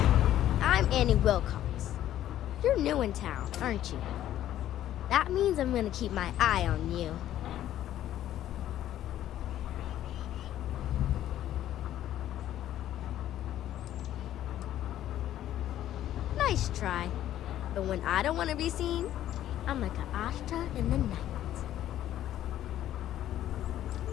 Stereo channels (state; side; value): quieter; right; 12.3 dB